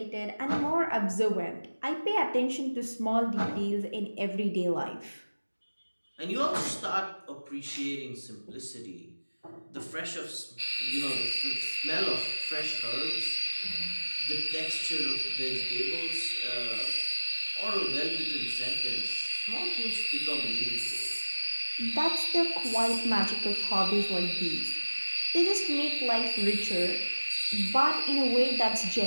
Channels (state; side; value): inverted; both; correlation -1.00